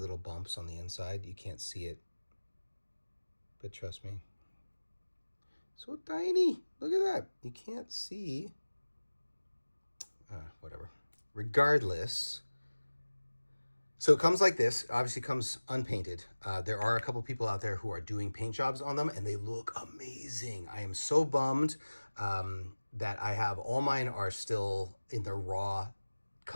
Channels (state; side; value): inverted; both; correlation -1.00